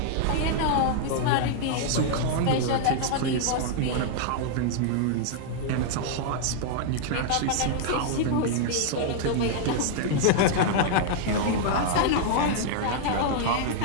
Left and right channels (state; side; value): different; both; correlation -0.01